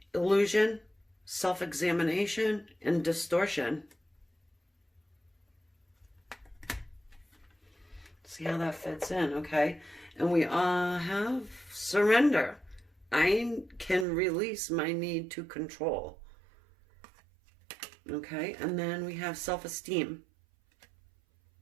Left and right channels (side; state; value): left; drops out; at 14.1 s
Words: illusion, self-examination, and distortion. See how that fits in, okay? And we have surrender. I can release my need to control. Okay, and then we have self-esteem.